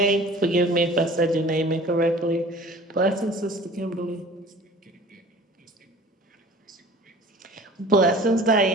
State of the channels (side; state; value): both; normal; correlation 0.45